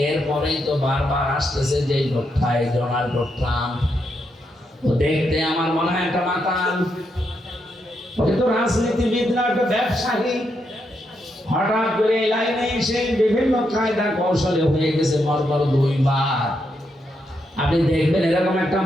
এরপরেই তো বারবার আসতেছে যে লোকটা, ডোনাল্ড ট্রাম্প। ও দেখতে আমার মনে হয় একটা মাতাল, ওকে তো রাজনীতিবিদ না, একটা ব্যবসায়ী। হঠাৎ করে এই লাইনে এসে বিভিন্ন কায়দা কৌশলে হয়ে গেছে মরবার 2 বার। আপনি দেখবেন এরকম একটা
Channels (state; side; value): normal; both; correlation 0.81